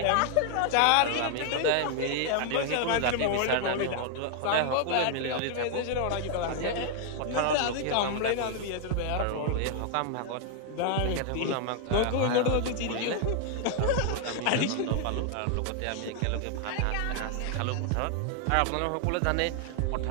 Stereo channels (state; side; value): different; both; correlation 0.00